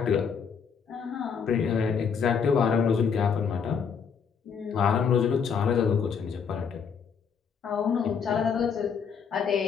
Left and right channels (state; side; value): quieter; right; 6.5 dB